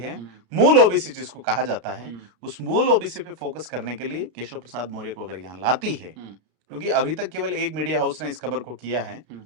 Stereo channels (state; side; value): late; left; 33 ms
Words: मूल ओबीसी जिसको कहा जाता है, उस मूल ओबीसी पे फोकस करने के लिए केशव प्रसाद मौर्य को अगर यहाँ लाती है, क्योंकि अभी तक केवल एक मीडिया हाउस ने इस खबर को किया है,